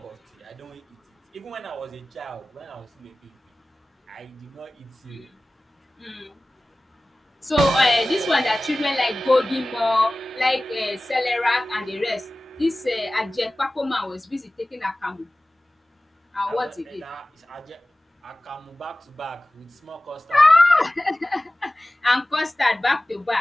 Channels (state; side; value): normal; both; correlation 0.97